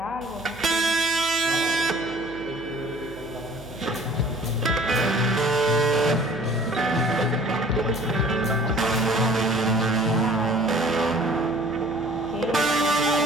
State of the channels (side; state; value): right; noise; hum, 20 dB below the sound